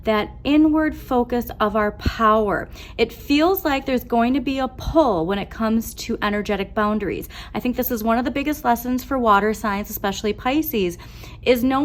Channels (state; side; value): identical; both; correlation 1.00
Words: that inward focus of our power. It feels like there's going to be a pull when it comes to energetic boundaries. I think this is one of the biggest lessons for water signs, especially Pisces, is